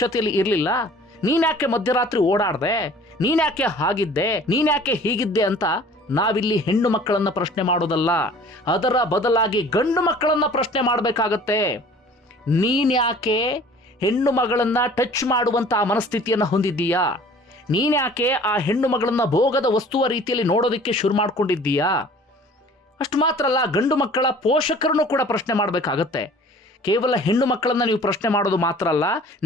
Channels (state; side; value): normal; both; correlation 0.48